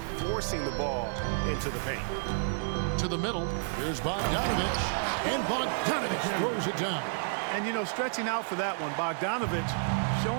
forcing the ball into the paint. To the middle. Here's Bogdanovic. And Bogdanovic throws it down. And, you know, stretching out for that one, Bogdanovic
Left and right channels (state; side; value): silent; left; 57 dB below the other